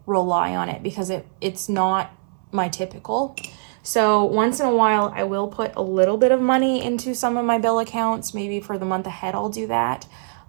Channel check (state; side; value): silent; left; 64 dB below the other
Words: rely on it because it's not my typical. So once in a while, I will put a little bit of money into some of my bill accounts. Maybe for the month ahead, I'll do that.